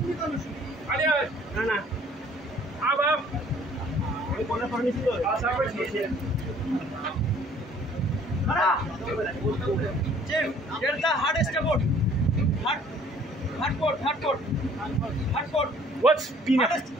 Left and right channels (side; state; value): both; normal; correlation 0.56